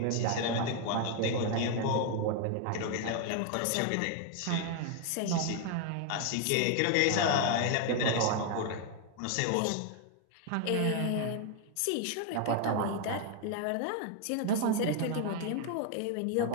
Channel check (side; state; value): both; different; correlation 0.00